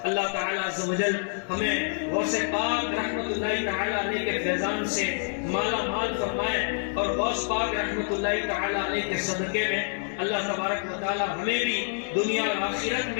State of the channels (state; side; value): silent; right; 60 dB below the other